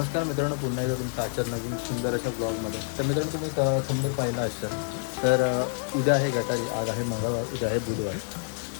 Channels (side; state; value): right; silent; 60 dB below the other